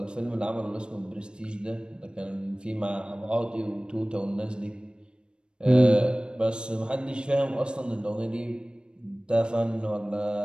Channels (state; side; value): late; left; 0.053 ms